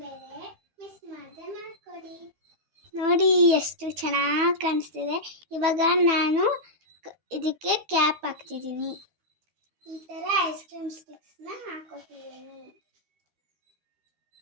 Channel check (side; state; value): left; late; 12 ms